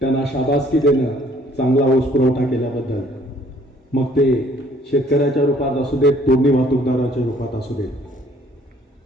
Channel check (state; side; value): normal; both; correlation 0.60